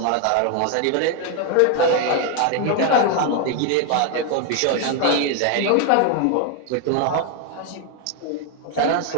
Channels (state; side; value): different; both; correlation 0.01